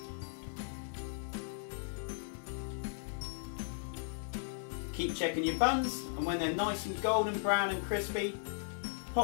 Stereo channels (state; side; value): silent; right; 53 dB below the other